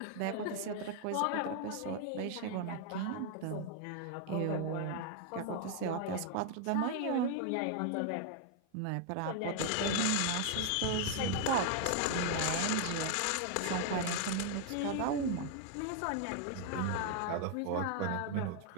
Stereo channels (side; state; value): both; different; correlation 0.00